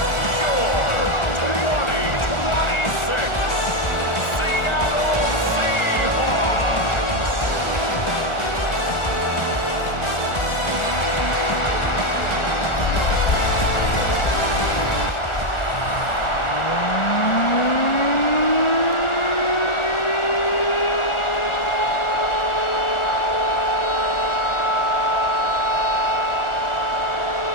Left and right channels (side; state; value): right; late; 1.4 ms